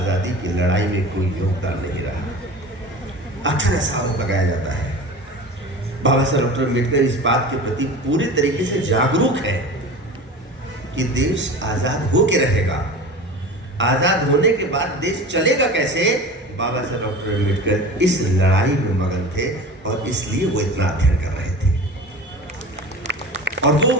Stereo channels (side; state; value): both; normal; correlation 0.34